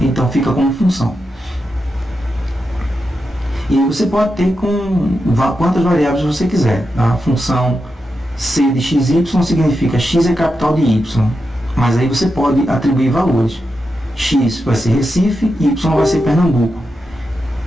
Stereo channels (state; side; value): normal; both; correlation 0.88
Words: fica como função. E você pode ter com quantas variáveis você quiser. A função c de xy significa x é capital de y. Mas aí você pode atribuir valores. X vai ser Recife, y vai ser Pernambuco.